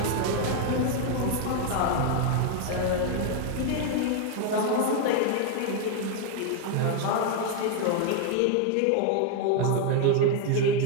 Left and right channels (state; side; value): different; both; correlation 0.01